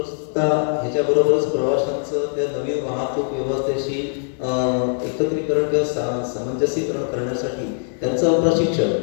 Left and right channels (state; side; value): silent; right; 57 dB below the other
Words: ह्याच्याबरोबरच प्रवाशांचं त्या नवीन वाहतूक व्यवस्थेशी एकत्रीकरण किंवा सामंजस्यीकरण करण्यासाठी त्यांचं प्रशिक्षण,